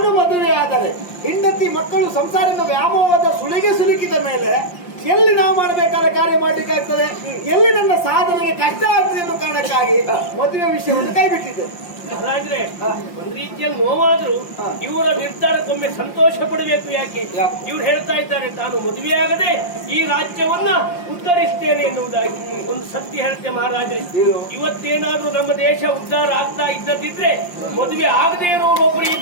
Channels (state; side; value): late; right; 5.7 ms